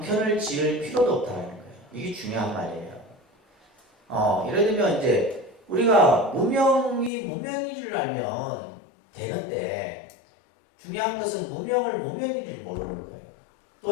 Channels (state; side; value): drops out; right; at 7.1 s